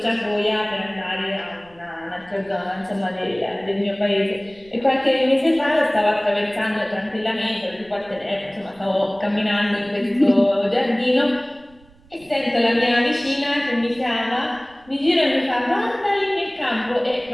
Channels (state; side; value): noise; right; rumble, 28 dB below the sound